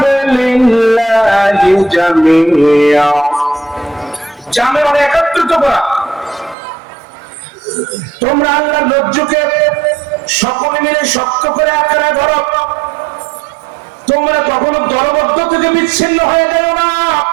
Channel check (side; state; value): left; drops out; at 6.6 s